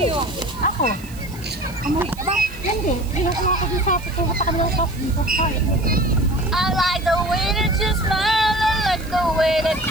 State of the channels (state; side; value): noise; right; hiss, 20 dB below the sound